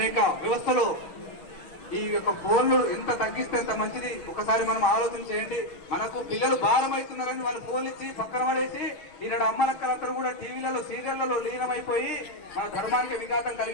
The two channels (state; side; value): late; right; 6.2 ms